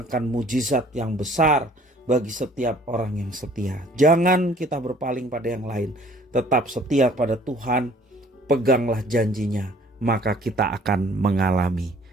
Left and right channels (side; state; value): both; normal; correlation 0.55